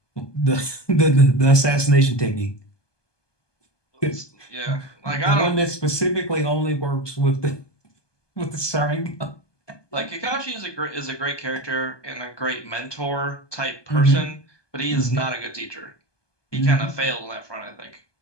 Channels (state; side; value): late; right; 1.2 ms